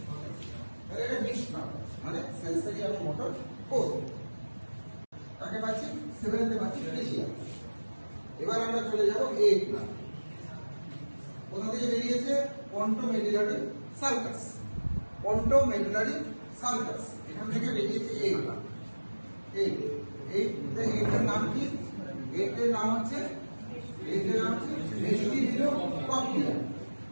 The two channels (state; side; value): inverted; both; correlation -1.00